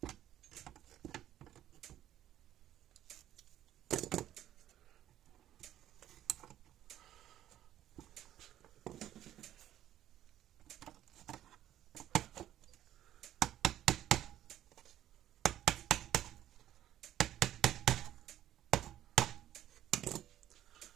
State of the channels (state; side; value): quieter; left; 12.2 dB